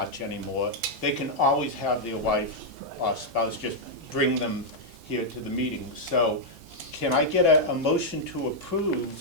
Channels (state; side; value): normal; both; correlation -0.04